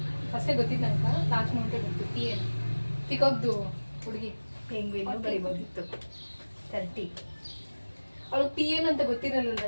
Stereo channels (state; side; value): inverted; both; correlation -1.00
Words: ಫಸ್ಟೇ ಗೊತ್ತಿದ್ದು ನಂಗೆ. ಲಾಸ್ಟ್ ಮೂಮೆಂಟೇ ಗೊತ್ತು. PN ಪಿಕಾಕ್ದು ಹುಡುಗಿ. ಪೆಂಗ್ವಿನ್ ಬರಿಬೋದಿತ್ತು. 30. ಅವಳು PN ಅಂತ ಗೊತ್ತಿರಲಿಲ್ಲ,